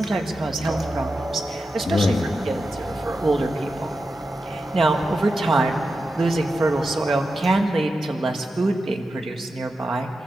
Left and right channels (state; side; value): normal; both; correlation 0.90